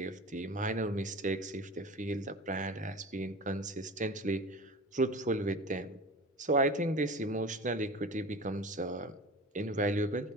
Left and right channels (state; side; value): normal; both; correlation 0.35